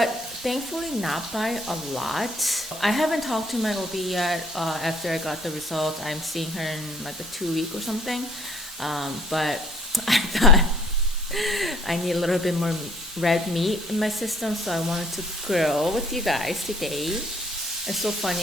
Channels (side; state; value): both; normal; correlation 0.58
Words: thankfully not by a lot. I haven't talked to my OB yet after I got the results. I'm seeing her in like a 2 week or something, but I thought I need a little bit more red meat in my system, so I wanted to grill with you guys today. It's so